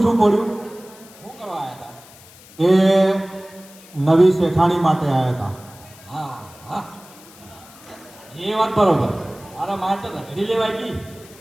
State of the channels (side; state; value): left; noise; hiss, 22 dB below the sound